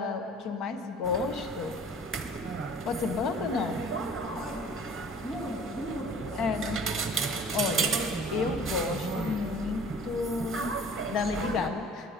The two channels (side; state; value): both; normal; correlation 0.47